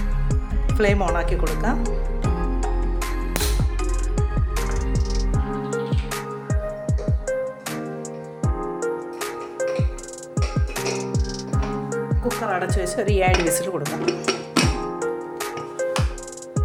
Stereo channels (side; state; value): both; identical; correlation 1.00